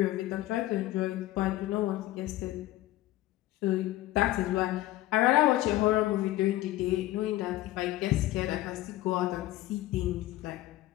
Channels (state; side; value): quieter; right; 16.1 dB